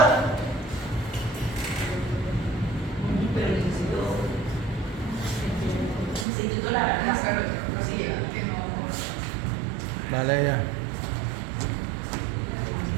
pero necesito la Dale ya.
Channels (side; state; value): left; drops out; at 6.2 s